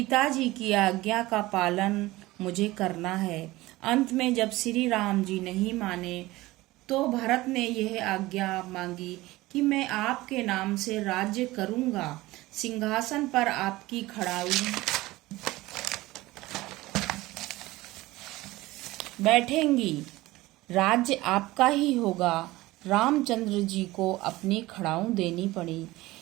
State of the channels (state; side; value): quieter; left; 18.9 dB